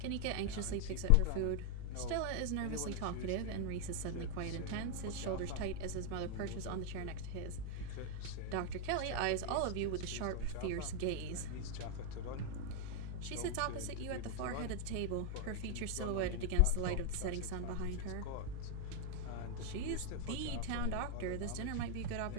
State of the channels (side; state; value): both; different; correlation 0.00